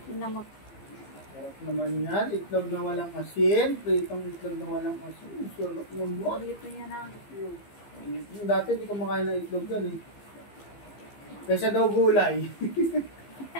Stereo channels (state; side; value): late; right; 15 ms